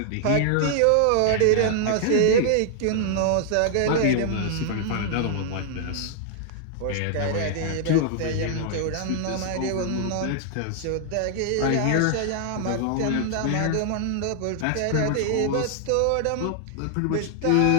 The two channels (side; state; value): both; different; correlation -0.01